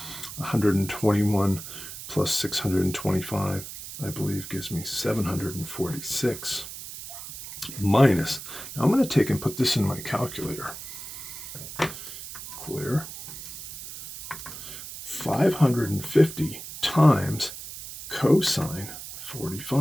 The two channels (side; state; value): right; noise; hiss, 11 dB below the sound